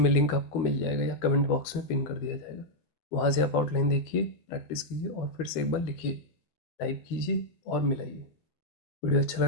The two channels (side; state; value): right; late; 12 ms